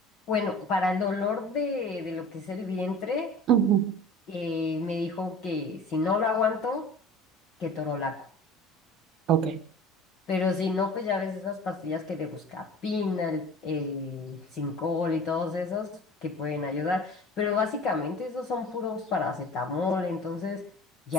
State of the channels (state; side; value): normal; both; correlation 0.40